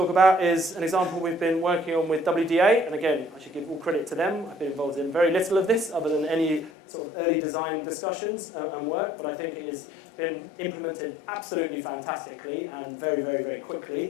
about is an example we've been working on with WDA. And again, I should give all credit to them. I've been involved in very little of this other than any sort of early design discussions and work, but I think it has been implemented absolutely fantastically and very, very, very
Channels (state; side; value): drops out; right; at 6.7 s